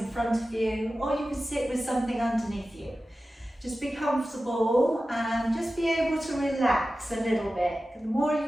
front of you, or you could sit with something underneath you. Just be comfortable and just be able to relax a little bit. The more you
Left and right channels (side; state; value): both; normal; correlation 0.94